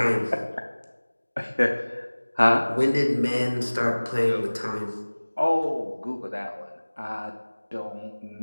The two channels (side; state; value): both; inverted; correlation -1.00